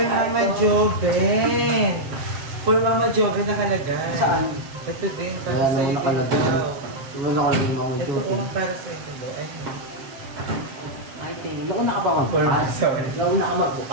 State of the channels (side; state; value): left; late; 7.5 ms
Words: Mama Joven. For Mama Joven nakalagay. Saan? Ito din, para sa ito daw. Wala nakalagay mo. Ito, oh, para sa ito daw. Ay, Ay, thank you. Nauna ka pa for Mama magbukas. Joven. Nauna ka